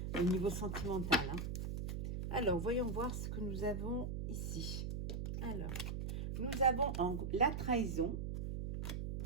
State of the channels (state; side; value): noise; right; hum, 3 dB below the sound